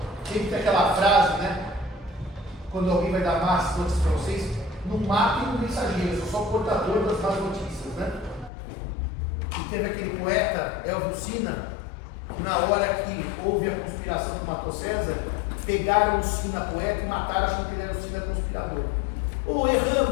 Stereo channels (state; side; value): drops out; right; at 8.5 s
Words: Sempre tem aquela frase, né? Quando alguém vai dar más notícias para vocês, não matem o mensageiro, eu sou só o portador das más notícias, né? E teve aquele poeta, Elvio Sina, que na hora que houve a conspiração que matou César, pegaram o Sina poeta e mataram, achando que ele era o Sina conspirador. Ou